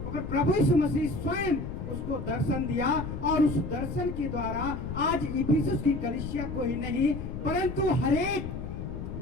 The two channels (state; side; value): noise; left; rumble, 6 dB below the sound